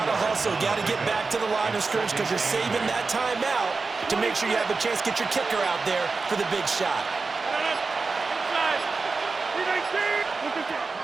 to hustle. Got to get back to the line of scrimmage because you're saving that timeout to make sure you have a chance to get your kicker out there for the big shot.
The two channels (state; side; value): quieter; left; 4.2 dB